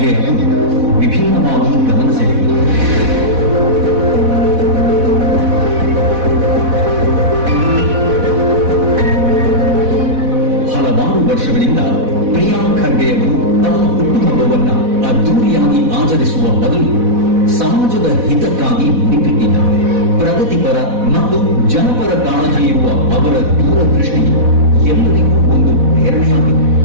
ಅವರು ವಿಭಿನ್ನವಾಗಿ ಗಮನ ಸೆಳೆದರು. ಹಲವಾರು ವರ್ಷಗಳಿಂದ ಪ್ರಿಯಾಂಕ್ ಖರ್ಗೆ ಅವರು ತಮ್ಮ ಹುಟ್ಟುಹಬ್ಬವನ್ನ ಅದ್ದೂರಿಯಾಗಿ ಆಚರಿಸುವ ಬದಲು ಸಮಾಜದ ಹಿತಕ್ಕಾಗಿ ಮುಡಿಪಿಟ್ಟಿದ್ದಾರೆ. ಪ್ರಗತಿಪರ ಮತ್ತು ಜನಪರ ಕಾಳಜಿ ಇರುವ ಅವರ ದೂರದೃಷ್ಟಿ ಎಲ್ಲರಿಗೂ ಒಂದು ಪ್ರೇರಣೆಯಾಗಿದೆ.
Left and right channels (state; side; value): late; left; 4.1 ms